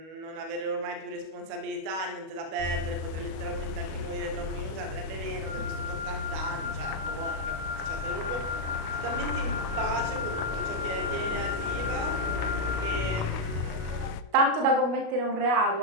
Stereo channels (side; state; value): left; late; 36 ms